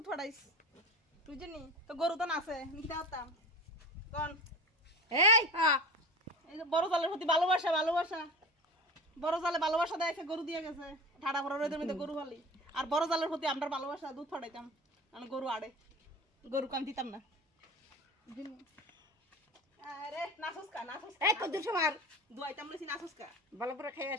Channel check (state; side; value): normal; both; correlation 0.32